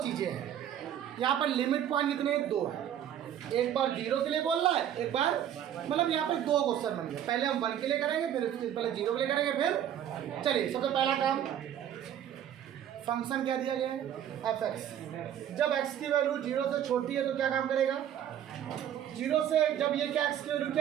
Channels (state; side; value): quieter; left; 10.2 dB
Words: चीजें हैं, यहाँ पर लिमिट पॉइंट कितने 2 है, एक बार 0 के लिए बोल रहा है, एक बार मतलब यहाँ पर 2 क्वेश्चन बन गए। पहले हम 1 के लिए करेंगे, फिर पहले 0 के लिए करेंगे, फिर चलिए सबसे पहला काम फंक्शन क्या दिया गया है fx। जब x की वैल्यू 0 से छोटी है तो क्या काम करेगा 0 से, जब ये क्या x की वैल्यू